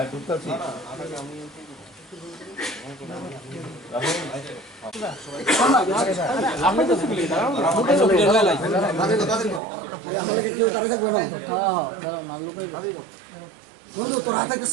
নন্দু তোর হাতে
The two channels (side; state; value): left; drops out; at 9.6 s